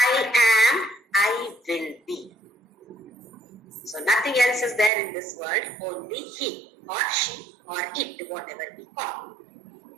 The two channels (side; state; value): left; drops out; at 4.9 s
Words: am, I will be. So nothing else is there in this world, only he or she or it, whatever we call.